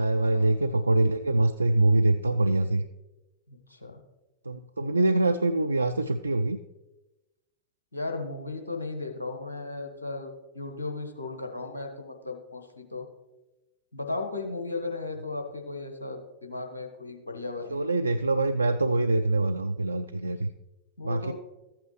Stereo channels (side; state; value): both; inverted; correlation -0.90